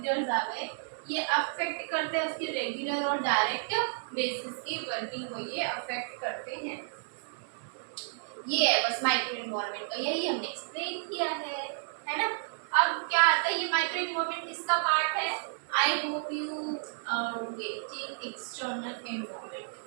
आ गए, ये अफेक्ट करते हैं उसकी रेगुलर और डायरेक्ट बेसिस की वर्किंग को, ये अफेक्ट करते हैं। ये है बस माइक्रो इन्वायरमेंट का, यही हमने एक्सप्लेन किया है ना। अब क्या आता है, ये माइक्रो इन्वायरमेंट किसका पार्ट है? I hope you are getting external environment.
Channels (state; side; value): silent; left; digital silence